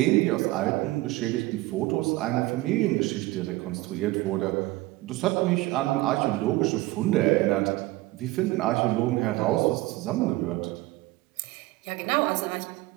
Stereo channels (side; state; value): left; quieter; 19.5 dB